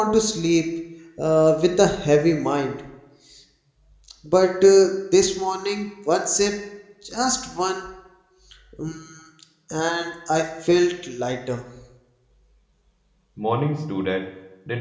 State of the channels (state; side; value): identical; both; correlation 1.00